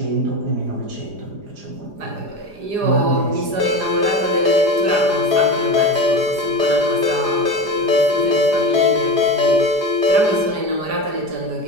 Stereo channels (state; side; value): late; left; 4.9 ms